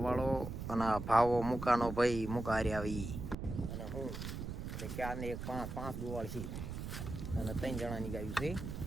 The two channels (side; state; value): right; noise; rumble, 6 dB below the sound